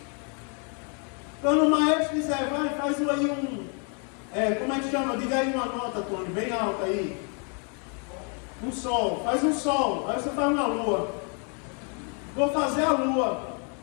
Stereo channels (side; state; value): right; quieter; 39.2 dB